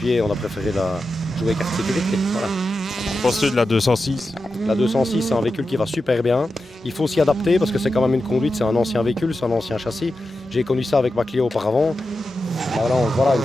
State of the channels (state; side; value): normal; both; correlation 0.90